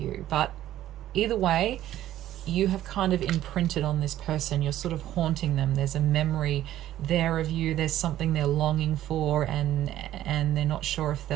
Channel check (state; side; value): quieter; left; 13.0 dB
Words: But either way, you have kind of imprinted on this person. You're sort of haunting them. There's a memory there of you. There's something they're longing for, and they're not sure if